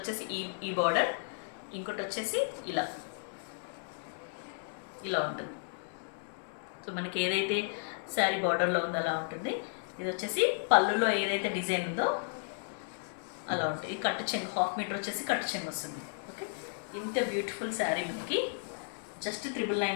ఈ బార్డర్, ఇంకోటి వచ్చేసి ఇలా ఉంటుంది. సో మనకి ఏదైతే శారీ బార్డర్లో ఉందో అలా ఉంటుంది. ఇది వచ్చేసి పళ్ళులో ఏదైతే డిజైన్ ఉందో అలా ఉంటుంది. ఈ కట్టు చెంగు 1/2 మీటర్ వచ్చేసి కట్టు చెంగు వస్తుంది. ఓకే, ఇంత బ్యూటిఫుల్ శారీ మనకి జస్ట్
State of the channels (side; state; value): right; silent; 55 dB below the other